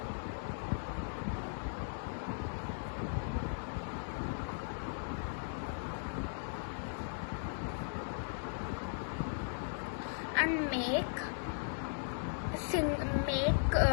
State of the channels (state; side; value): silent; right; digital silence